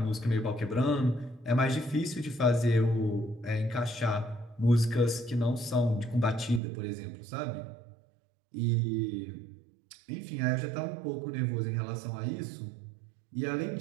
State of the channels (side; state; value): left; drops out; at 6.6 s